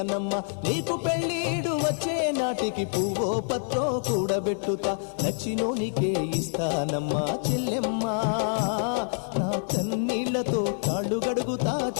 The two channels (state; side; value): silent; right; digital silence